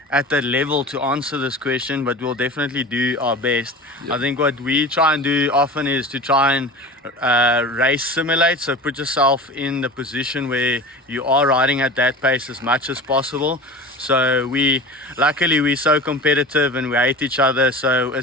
at that level to answer this question, but we'll definitely do our best. Yep. I think what we try and do often is to try and race simulate, so put yourself in the position where you are riding at that pace as much as possible. So luckily we're so competitive and we hate each other, so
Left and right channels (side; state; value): both; normal; correlation 0.33